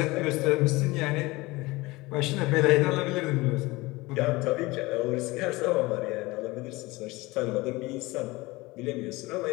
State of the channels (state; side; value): quieter; right; 21.8 dB